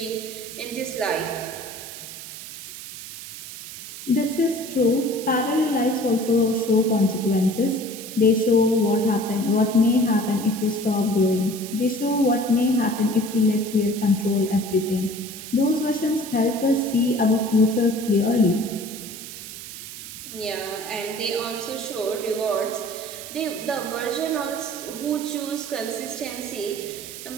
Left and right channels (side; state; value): right; noise; hiss, 12 dB below the sound